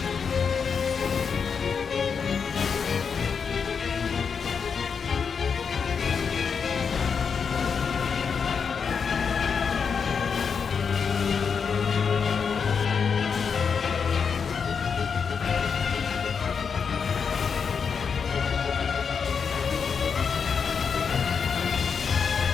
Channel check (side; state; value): right; quieter; 6.2 dB